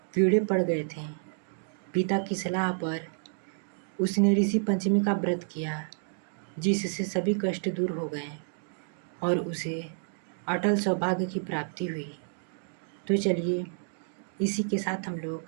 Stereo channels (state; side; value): silent; left; digital silence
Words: कीड़े पड़ गए थे। पिता की सलाह पर उसने ऋषि पंचमी का व्रत किया, जिससे सभी कष्ट दूर हो गए और उसे अटल सौभाग्य की प्राप्ति हुई। तो चलिए इसी के साथ हम